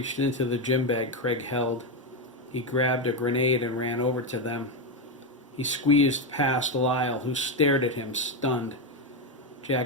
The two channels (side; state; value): both; normal; correlation 0.08